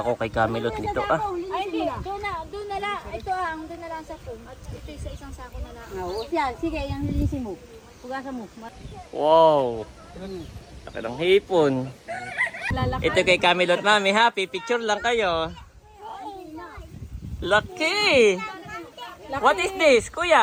kay Camilot nito ah. Ay, hindi. Doon na lang. Ito doon na lang sa phone. At ito sa isang sako na lang. Oo, yan. Sige, yung linisin mo. Pugasan mo. Wow. Laki ng hipon. Ito kay Camilot mami, happy picture lang kayo. Lucky. What is this,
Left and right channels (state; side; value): identical; both; correlation 1.00